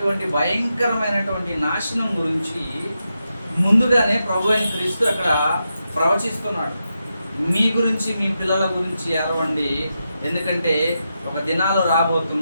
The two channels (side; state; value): both; inverted; correlation -0.87